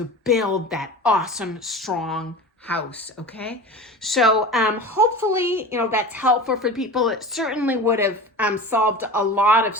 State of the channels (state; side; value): normal; both; correlation 0.33